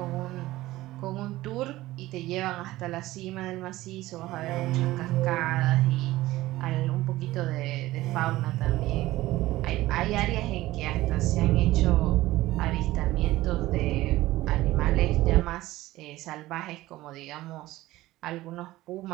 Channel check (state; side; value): quieter; left; 17.1 dB